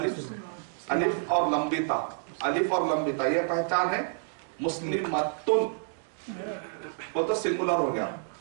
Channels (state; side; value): silent; left; digital silence